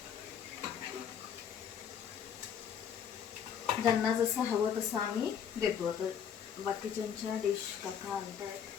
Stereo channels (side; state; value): right; quieter; 8.1 dB